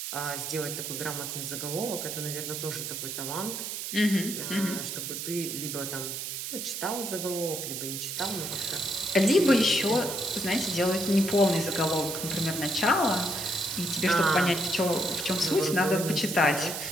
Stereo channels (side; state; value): right; noise; hiss, 5 dB below the sound